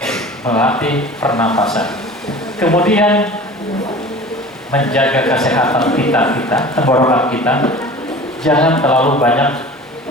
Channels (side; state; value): both; normal; correlation 0.40